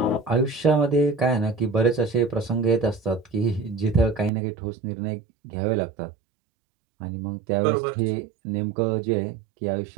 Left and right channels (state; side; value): drops out; left; at 4.3 s